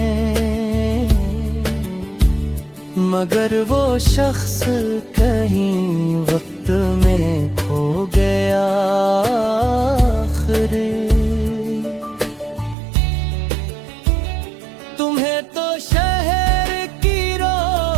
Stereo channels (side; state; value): left; drops out; at 12.8 s